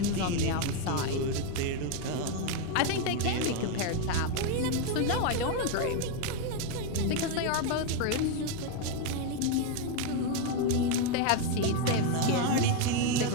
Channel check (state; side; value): different; both; correlation 0.02